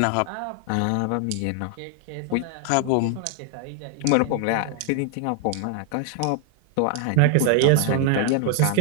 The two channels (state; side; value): different; both; correlation 0.00